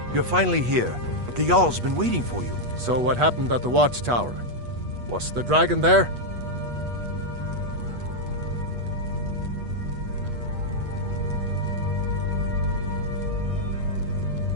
You're finally here. The Jarl's been waiting for you. So what happened at the watchtower? Was the dragon there?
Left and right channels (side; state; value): left; late; 8.3 ms